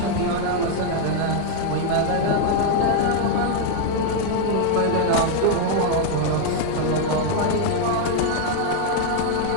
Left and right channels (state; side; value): different; both; correlation 0.00